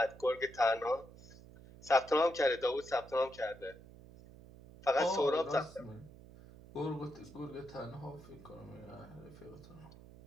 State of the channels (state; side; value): noise; right; hum, 19 dB below the sound